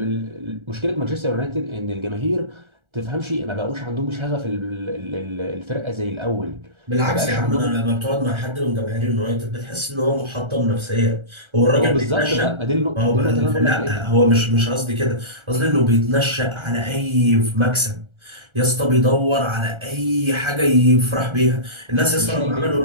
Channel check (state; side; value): late; left; 1.3 ms